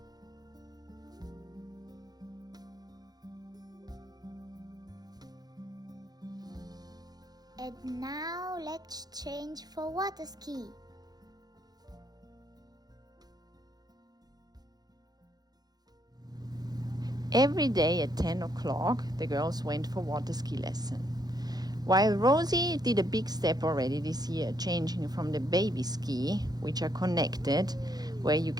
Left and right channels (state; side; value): late; left; 0.19 ms